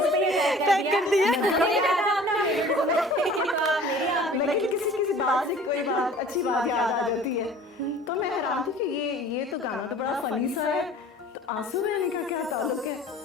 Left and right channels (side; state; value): both; normal; correlation 0.47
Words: पे ही टैग कर दिया। लेकिन किसी बात से कोई बात अच्छी बात याद आ जाती है, तो मैं हैरान थी कि ये तो गाना तो बड़ा फनी सा है, तो आंसू बहने का क्या ताल्लुक है।